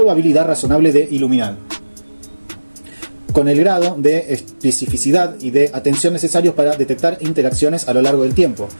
razonable de iluminar, con el grado de especificidad y de atención necesarios para detectar interacciones a lo largo del tiempo,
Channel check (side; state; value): both; inverted; correlation -1.00